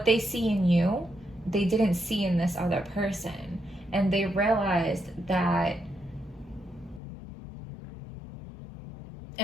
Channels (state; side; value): drops out; right; at 7.0 s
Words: they see in you, they didn't see in this other person. And they realized that